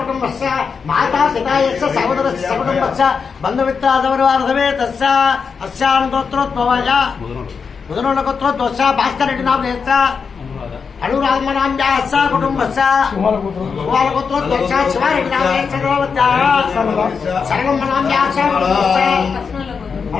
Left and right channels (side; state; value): right; quieter; 5.7 dB